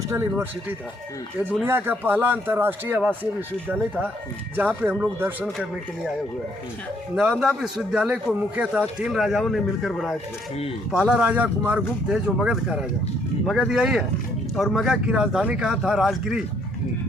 यूनिवर्सिटी था। ये दुनिया का पहला अंतर्राष्ट्रीय आवासीय विश्वविद्यालय था जहाँ पे हम लोग दर्शन करने के लिए आए हुए हैं। नालंदा विश्वविद्यालय को मुख्यतः 3 राजाओं ने मिलकर बनाए थे। पहला राजा कुमारगुप्त थे जो मगध का राजा, मगध यही है। और मगध की राजधानी कहाँ था? राजगिरी,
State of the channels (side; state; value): both; normal; correlation 0.68